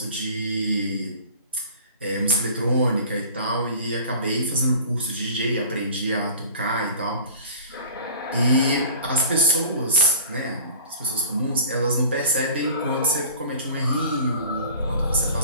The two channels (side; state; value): both; inverted; correlation -0.43